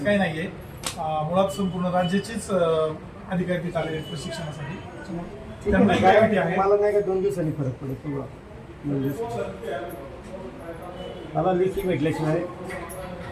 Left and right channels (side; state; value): both; identical; correlation 1.00